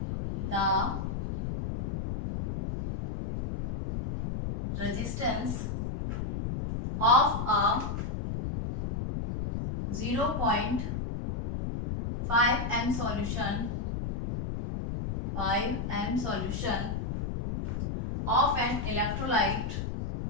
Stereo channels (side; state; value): left; noise; rumble, 3 dB below the sound